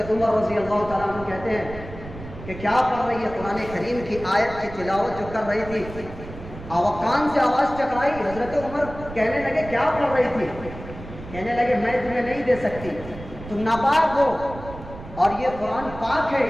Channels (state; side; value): noise; right; rumble, 13 dB below the sound